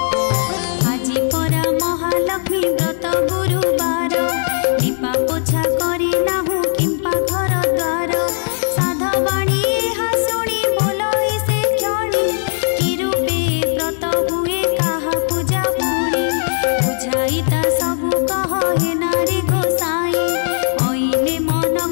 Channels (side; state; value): right; silent; digital silence